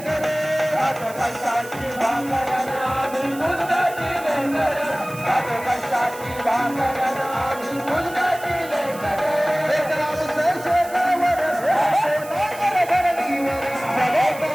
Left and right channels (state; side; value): noise; right; hiss, 17 dB below the sound